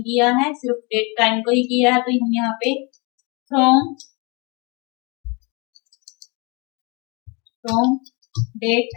किया है, सिर्फ डेट टाइम को ही किया है, तो हम यहाँ पे from date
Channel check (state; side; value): quieter; right; 29.8 dB